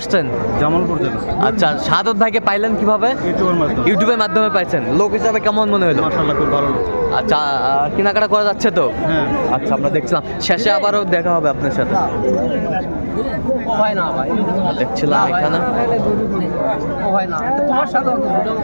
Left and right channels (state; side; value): inverted; both; correlation -1.00